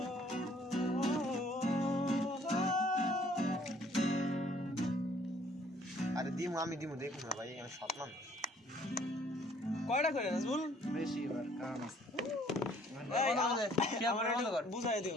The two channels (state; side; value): normal; both; correlation 0.60